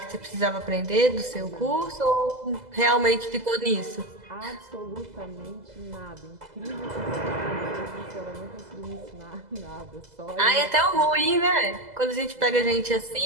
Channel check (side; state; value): left; late; 2.0 ms